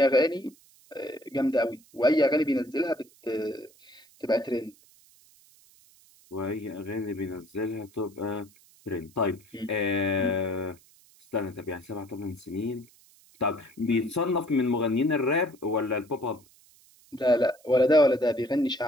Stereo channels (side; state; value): right; noise; hiss, 28 dB below the sound